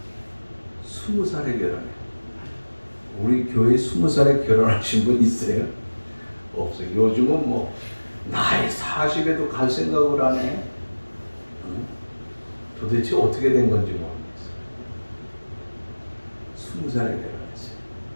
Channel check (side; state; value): both; inverted; correlation -1.00